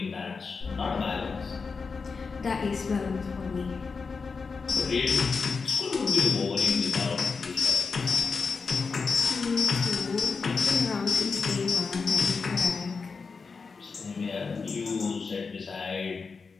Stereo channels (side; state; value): right; quieter; 4.8 dB